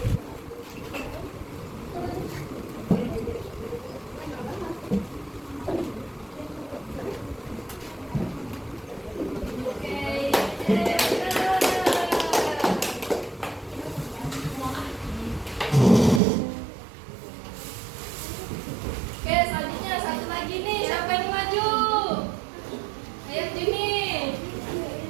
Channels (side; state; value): left; drops out; at 16.2 s